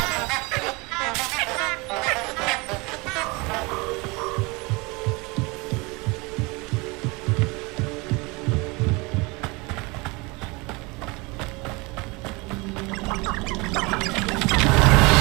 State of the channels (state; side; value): quieter; left; 26.2 dB